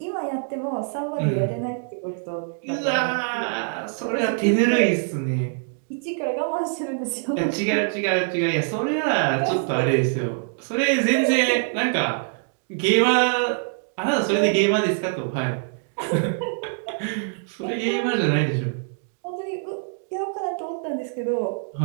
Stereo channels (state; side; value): silent; left; 62 dB below the other